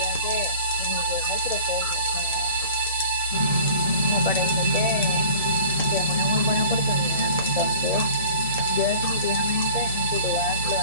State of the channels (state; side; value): inverted; both; correlation -0.45